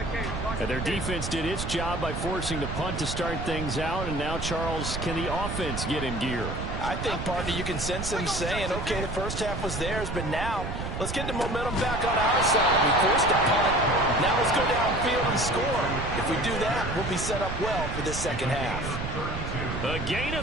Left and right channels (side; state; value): right; noise; rumble, 5 dB below the sound